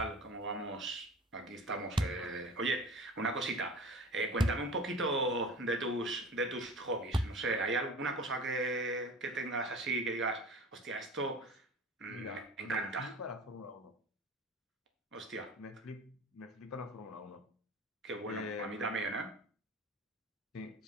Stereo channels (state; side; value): normal; both; correlation 0.39